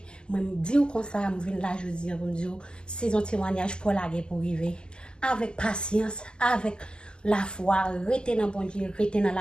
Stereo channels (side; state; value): right; late; 0.047 ms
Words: moi, je dis comme ça, je viens là, je dis, je dis, saison témoignage pour la guerre pour arriver. Avec patience, avec la foi, rester dans bon Dieu, rester dans